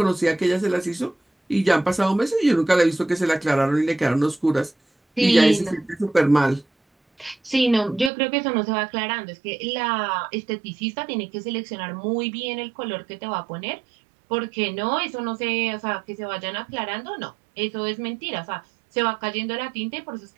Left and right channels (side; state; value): left; drops out; at 8.1 s